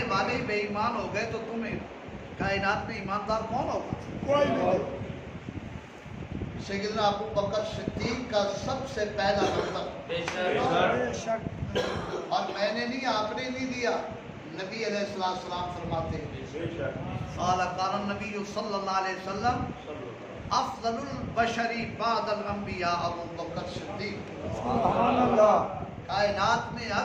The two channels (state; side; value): identical; both; correlation 1.00